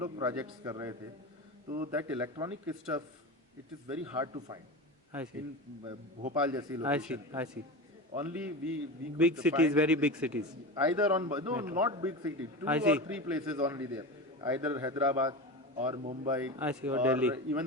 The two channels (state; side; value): normal; both; correlation 0.25